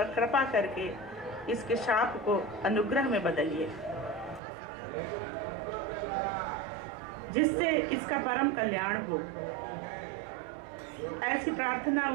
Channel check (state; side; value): drops out; left; at 4.4 s